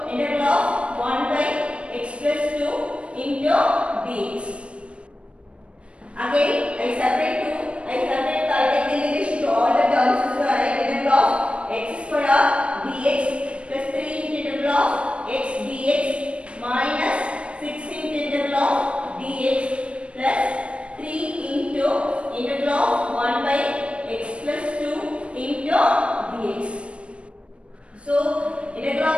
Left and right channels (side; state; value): left; late; 0.060 ms